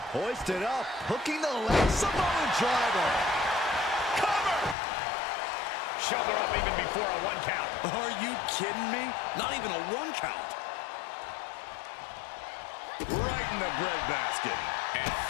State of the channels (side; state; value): right; drops out; at 4.8 s